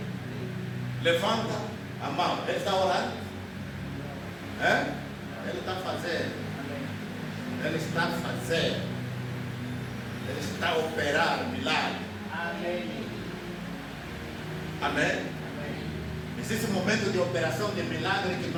levanta a mão. Ele está orando? Ele está fazendo. Ele está fazendo. Ele está a operar milagre. Amém. Amém. Existe um momento de operação de milagre que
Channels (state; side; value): identical; both; correlation 1.00